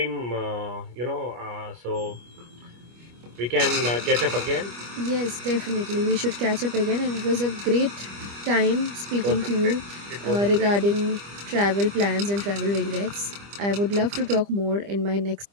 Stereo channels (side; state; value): left; late; 25 ms